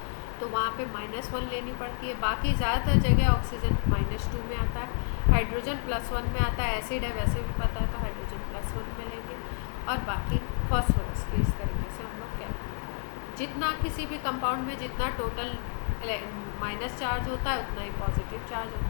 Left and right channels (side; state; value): right; silent; digital silence